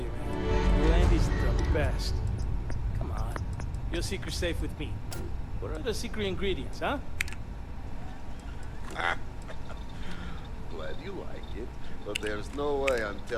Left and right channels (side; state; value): both; identical; correlation 1.00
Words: man, Landy's the best. Come on. Your secret's safe with me. What are the secret ingredients, huh? Glad you like it, but there's no way I'm